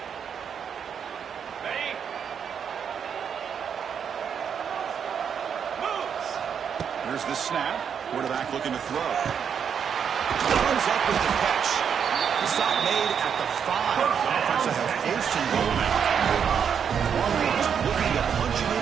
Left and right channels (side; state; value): left; quieter; 7.5 dB